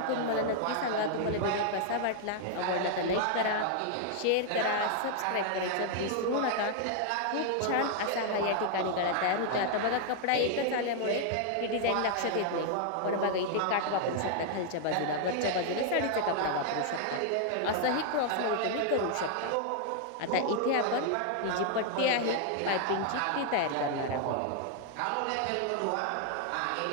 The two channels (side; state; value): both; different; correlation 0.00